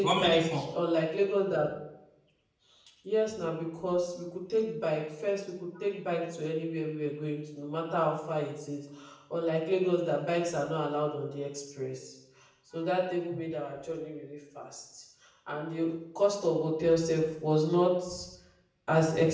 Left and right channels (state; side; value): identical; both; correlation 1.00